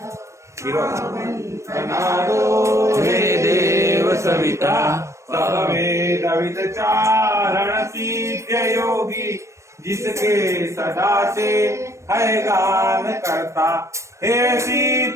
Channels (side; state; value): left; late; 0.14 ms